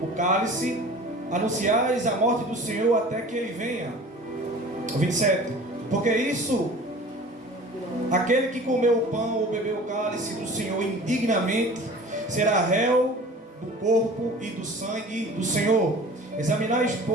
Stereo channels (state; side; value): normal; both; correlation 0.42